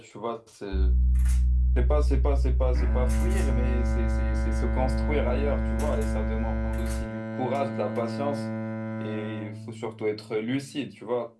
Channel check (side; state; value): both; identical; correlation 1.00